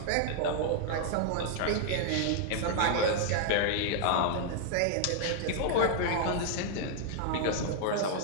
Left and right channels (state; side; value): different; both; correlation -0.01